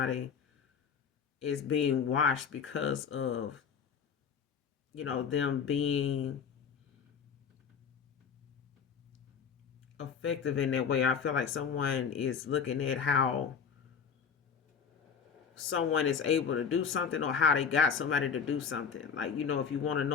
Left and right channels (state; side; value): quieter; right; 6.7 dB